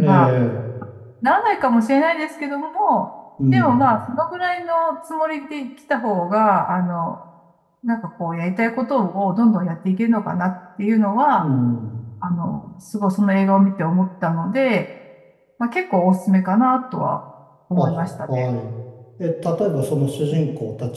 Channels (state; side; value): identical; both; correlation 1.00